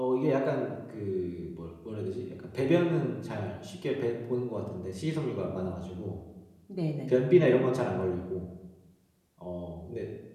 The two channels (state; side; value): identical; both; correlation 1.00